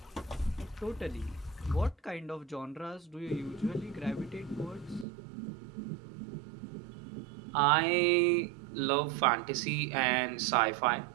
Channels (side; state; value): left; drops out; at 5.1 s